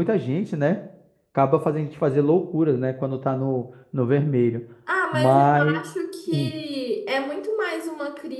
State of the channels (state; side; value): identical; both; correlation 1.00